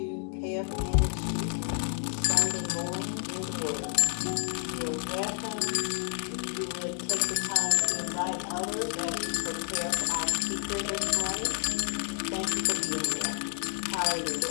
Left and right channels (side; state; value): right; silent; 58 dB below the other